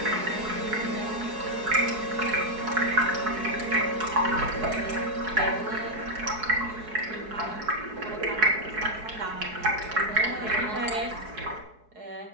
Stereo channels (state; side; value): late; left; 4.7 ms